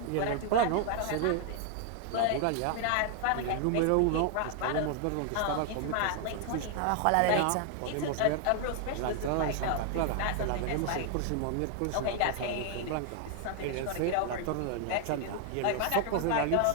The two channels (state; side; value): different; both; correlation 0.00